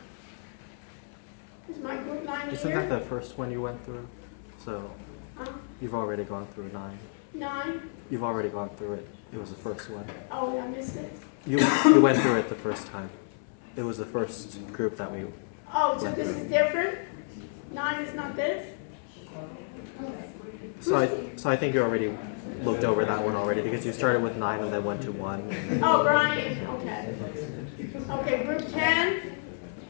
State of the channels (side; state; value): right; silent; 58 dB below the other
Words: Is my group 9 Isn't here? that the first one you went through? So Huh? you've already gone through 9. 9? You've already gone through it. It was the first one. Oh, I missed it. You went through it the first time. It was the first group that we. Oh, so this is different? 9 is not this? So I think you already looked over that one already because you started with 9 and then went to 1. Oh, Brian, okay. Okay, group 10?